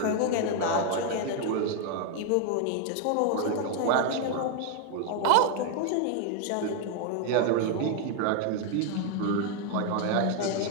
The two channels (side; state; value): both; different; correlation 0.01